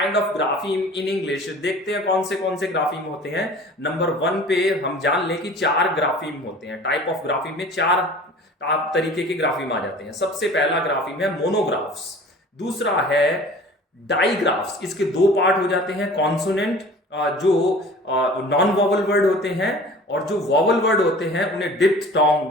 of grapheme in English, देखते हैं कौन से ग्राफीम होते हैं। नंबर 1 पे हम जान लें कि 4 ग्राफीम होते हैं। टाइप ऑफ ग्राफीम में 4 तरीके के ग्राफीम आ जाते हैं। सबसे पहला ग्राफीम है मोनोग्राफ्स, दूसरा है डाइग्राफ्स। इसके दो पार्ट हो जाते हैं, कॉन्सोनेंट जो नॉन वॉवल वर्ड होते हैं और जो वॉवल वर्ड होते हैं उन्हें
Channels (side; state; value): both; normal; correlation 0.44